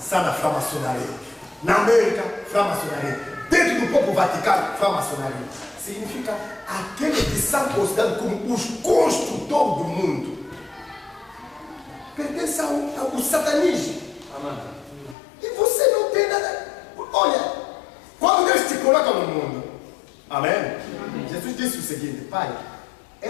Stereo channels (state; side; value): drops out; right; at 15.2 s